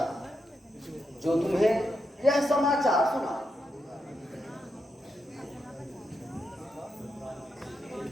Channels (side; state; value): both; normal; correlation 0.84